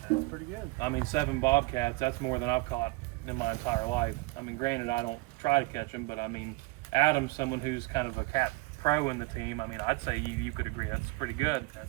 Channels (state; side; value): quieter; left; 24.5 dB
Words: That's pretty good. I mean, 7 bobcats. That's more than I've caught in my entire life. I mean, granted, I don't try to catch them, but I mean, Adam's someone who's kind of a cat pro in the team. I mean, I'd say you could agree that's pretty good.